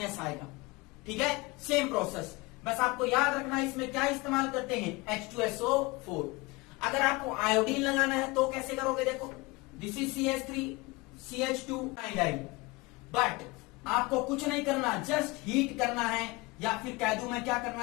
आएगा, ठीक है। सेम प्रोसेस, बस आपको याद रखना इसमें क्या इस्तेमाल करते हैं, H2SO4। अगर आपको आयोडीन लगाना है तो कैसे करोगे, देखो this is CH3 CH2 iodine, but आपको कुछ नहीं करना, जस्ट हीट करना है, या फिर कह दूं मैं क्या करना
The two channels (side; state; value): right; quieter; 24.0 dB